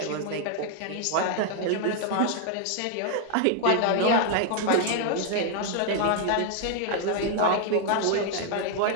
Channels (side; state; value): both; different; correlation 0.00